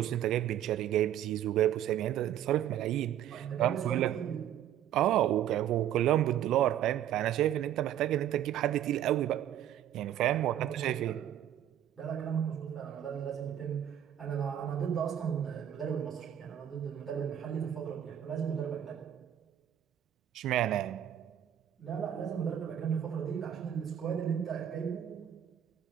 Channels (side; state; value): left; quieter; 10.8 dB